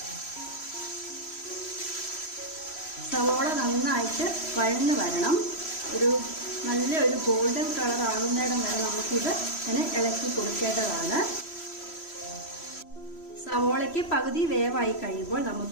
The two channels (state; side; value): late; right; 3.1 ms